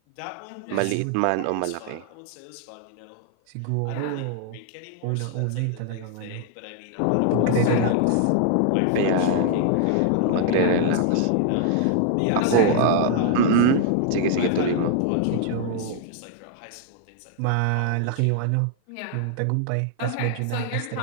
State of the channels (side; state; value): both; different; correlation -0.01